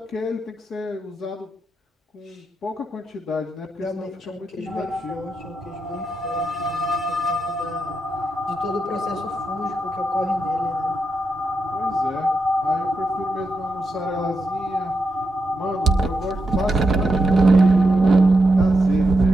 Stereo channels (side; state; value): both; normal; correlation 0.85